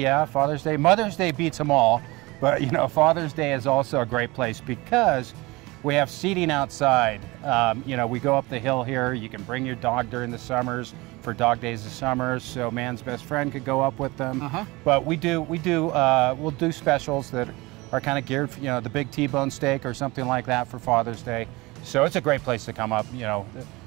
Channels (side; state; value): left; quieter; 22.8 dB